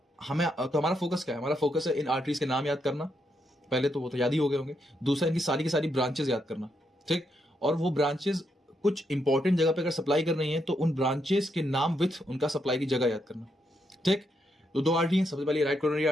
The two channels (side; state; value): both; normal; correlation 0.79